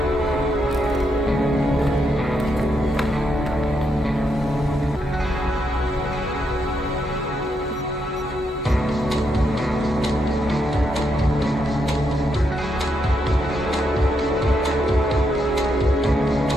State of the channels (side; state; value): both; normal; correlation 0.80